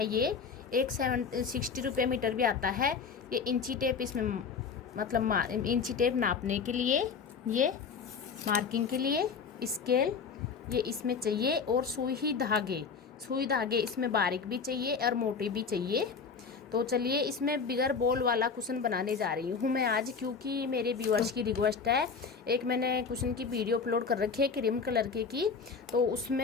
ये 60 रुपये मीटर भी आता है। ये इंची टेप इसमें, मतलब इंची टेप नापने के लिए, ये मार्किंग के लिए स्केल ये इसमें चाहिए, और सुई धागे इसमें बारीक भी चाहिए और मोटे भी चाहिए। तो चलिए इसमें बिगर बॉल वाला कुशन बनाने जा रही हूँ मैं आज, क्योंकि मेरे व्यूअर्स की रिक्वेस्ट है। एक मैंने कुशन की वीडियो अपलोड कर रखी है क्रीम कलर की, तो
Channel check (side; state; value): right; quieter; 5.6 dB